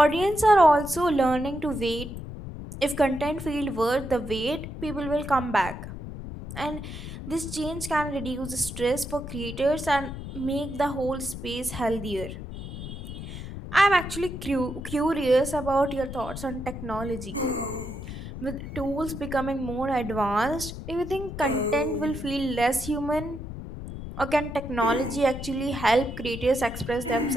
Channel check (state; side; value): noise; left; rumble, 9 dB below the sound